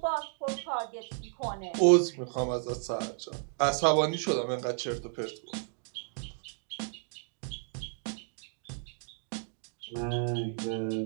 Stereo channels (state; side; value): silent; left; 56 dB below the other